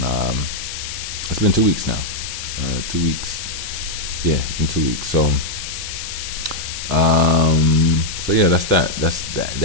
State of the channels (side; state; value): left; noise; hiss, 7 dB below the sound